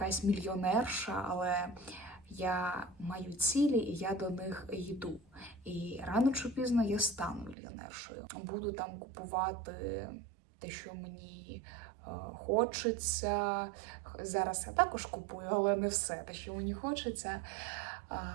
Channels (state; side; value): drops out; left; at 7.6 s